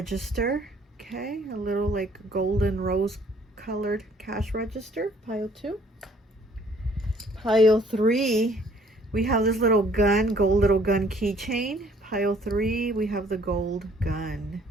Okay, a little like golden rose colored cash register, pile 2. Pile 3, we have this little gun, gold little gun keychain. Pile 3, we have the gold gun.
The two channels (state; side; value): normal; both; correlation 0.59